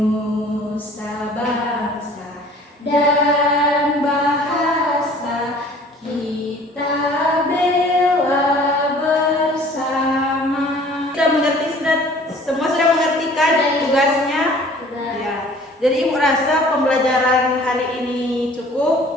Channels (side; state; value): both; normal; correlation 0.51